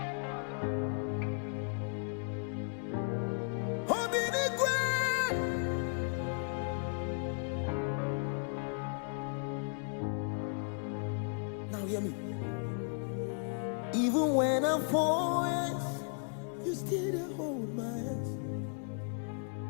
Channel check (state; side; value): silent; right; 54 dB below the other